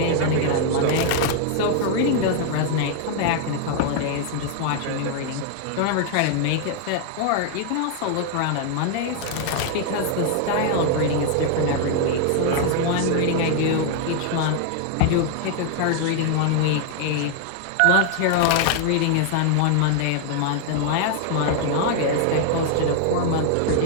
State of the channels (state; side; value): different; both; correlation 0.00